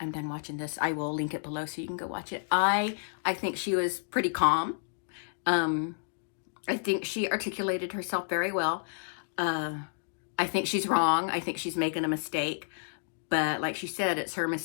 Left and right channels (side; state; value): right; silent; digital silence